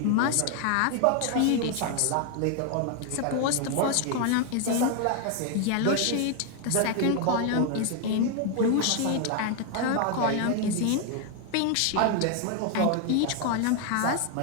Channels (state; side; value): different; both; correlation 0.01